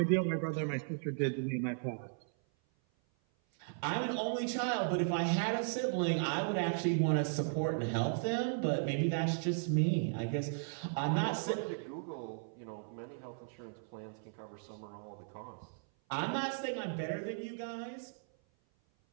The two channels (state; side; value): silent; left; 54 dB below the other